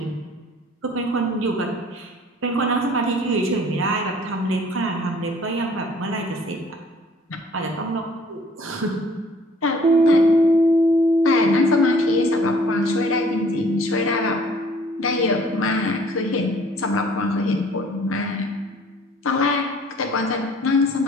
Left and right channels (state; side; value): normal; both; correlation 0.54